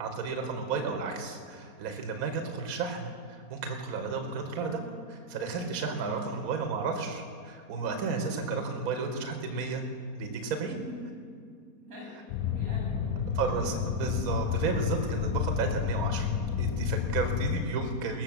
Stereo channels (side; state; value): left; late; 4.2 ms